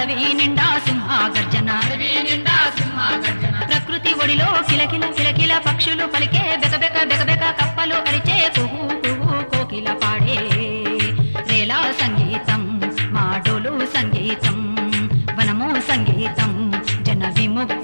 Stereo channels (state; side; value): inverted; both; correlation -1.00